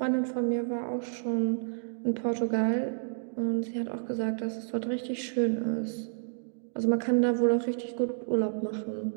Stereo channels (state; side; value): silent; left; digital silence